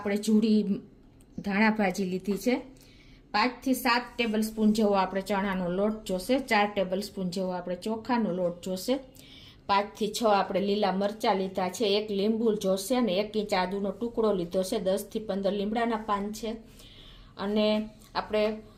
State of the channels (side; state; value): both; identical; correlation 1.00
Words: જુડી ધાણા ભાજી લીધી છે। 5 થી 7 ટેબલ સ્પૂન જેવો આપણે ચણાનો લોટ જોશે। 4 ટેબલ સ્પૂન જેવો આપણે ચોખાનો લોટ જોશે। 5 થી 6 આપણે લીલા મરચાં લીધા છે। 1 લીંબુ જોશે અને 1 ઇંચ આદુનો ટુકડો લીધો છે। 10 થી 15 લીમડાના પાન છે અને આપણે